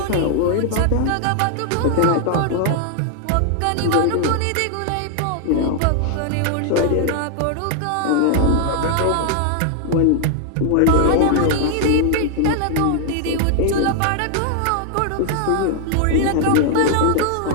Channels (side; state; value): both; different; correlation 0.00